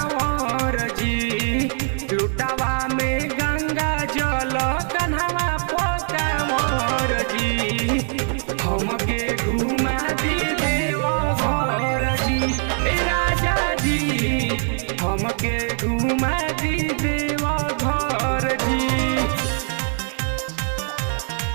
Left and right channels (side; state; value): left; silent; 59 dB below the other